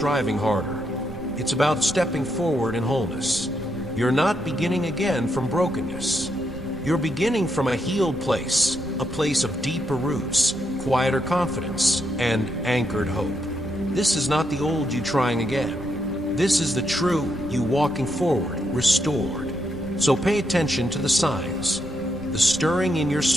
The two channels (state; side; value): noise; right; rumble, 14 dB below the sound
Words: harder. It's about stepping forward in wholeness. You're not beginning again from brokenness. You're beginning from a healed place, a place of deeper roots, quieter confidence, and anchored hope. This is not the old you trying again. This is the true you walking forward, restored. So pay attention to the signs, the stirring in your